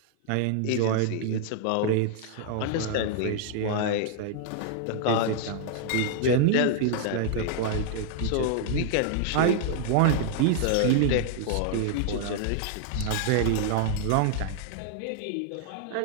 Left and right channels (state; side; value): different; both; correlation -0.01